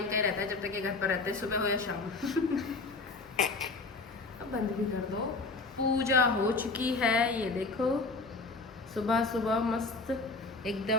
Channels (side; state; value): right; quieter; 3.7 dB